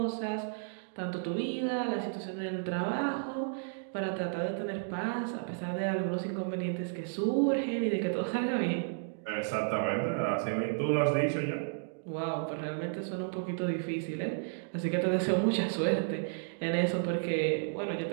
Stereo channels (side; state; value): left; silent; digital silence